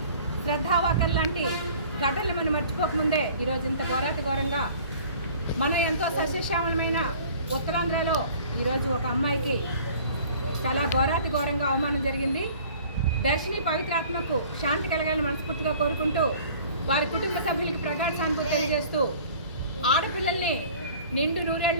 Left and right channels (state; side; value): inverted; both; correlation -0.49